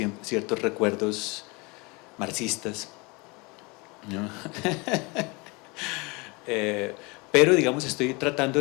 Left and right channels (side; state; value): right; quieter; 27.3 dB